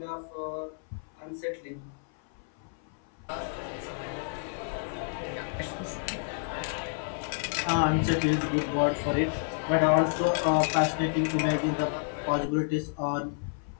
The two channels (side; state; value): right; silent; 58 dB below the other